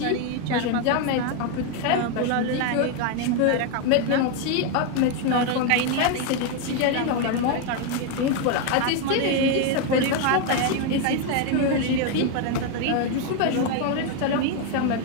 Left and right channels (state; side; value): different; both; correlation 0.02